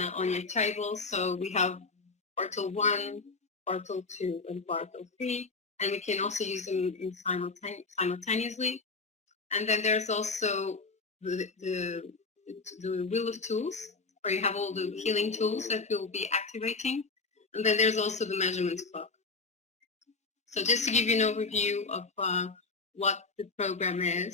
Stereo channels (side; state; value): right; quieter; 4.1 dB